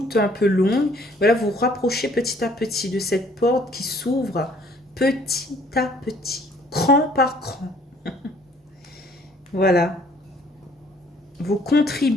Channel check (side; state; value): both; normal; correlation 0.59